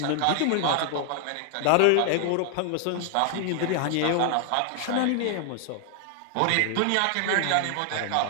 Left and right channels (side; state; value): both; different; correlation 0.00